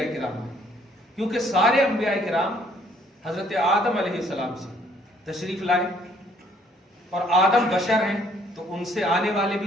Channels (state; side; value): normal; both; correlation 0.63